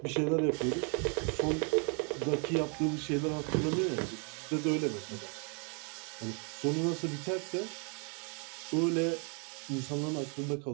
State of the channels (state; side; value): quieter; left; 38.2 dB